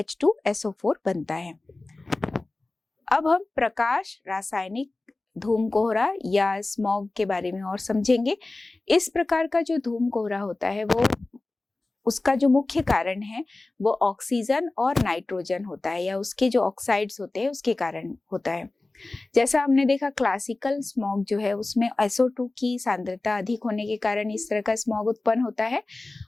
बनता है। अब हम प्रकाश रासायनिक धूम कोहरा या स्मॉग के बारे में और समझेंगे। इस प्रकार का जो धूम कोहरा होता है वो, उसका जो मुख्य कारण है वो ऑक्सीजन और नाइट्रोजन होता है या उसके जो ऑक्साइड्स होते हैं उसके कारण होता है। जैसा हमने देखा क्लासिकल स्मॉग जो है उसमें SO2 की सांद्रता अधिक होने के कारण इस तरह का स्मॉग उत्पन्न होता है,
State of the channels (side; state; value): right; quieter; 3.1 dB